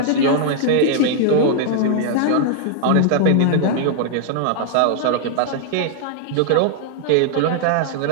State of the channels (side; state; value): both; different; correlation 0.00